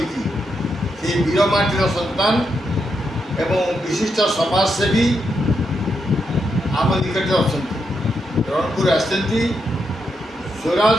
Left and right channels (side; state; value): both; normal; correlation 0.82